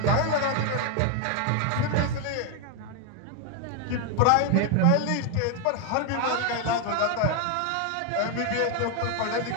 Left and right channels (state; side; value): different; both; correlation 0.00